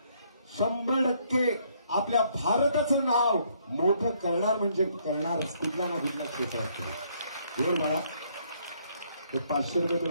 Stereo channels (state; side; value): inverted; both; correlation -0.68